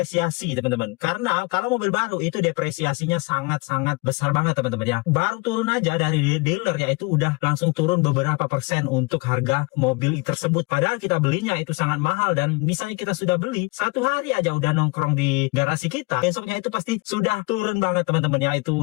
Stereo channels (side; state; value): right; quieter; 26.9 dB